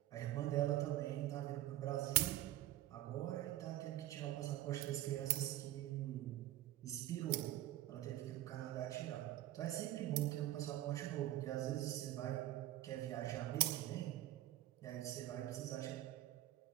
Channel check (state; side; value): quieter; left; 14.5 dB